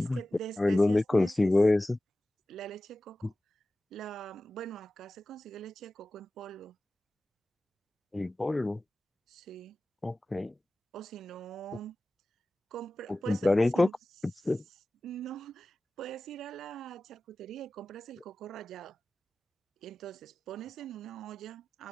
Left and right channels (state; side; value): normal; both; correlation 0.96